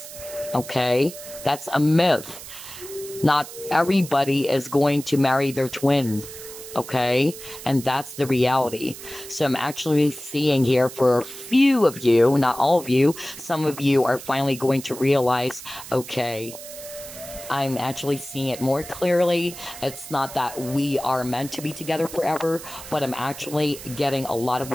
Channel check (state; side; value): noise; right; hiss, 13 dB below the sound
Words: Okay? That's a myth. Not everybody is going to marry their twin. Okay? And that's the reality. So I'm actually seeing here for a few of you, not all of you, some of you are finally going to realize, okay, I'm actually seeing it more clearly. It's not that we are meant to be together forever, but I'm actually getting a lot of